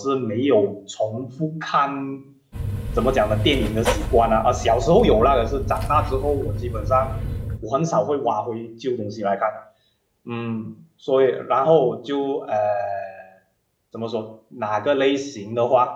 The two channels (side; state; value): both; identical; correlation 1.00